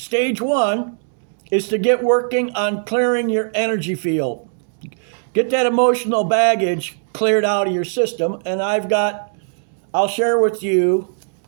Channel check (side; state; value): left; silent; digital silence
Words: 1 is to get working on clearing your energy field. Get that emotional baggage cleared out of your system. And I'll share with you,